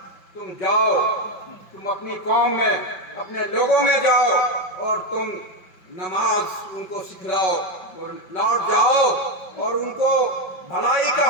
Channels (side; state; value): right; late; 5.4 ms